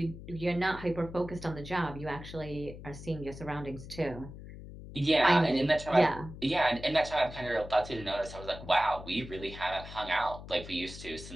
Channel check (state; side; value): noise; left; hum, 13 dB below the sound